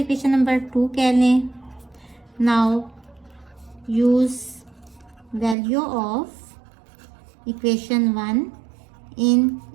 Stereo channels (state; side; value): drops out; left; at 5.6 s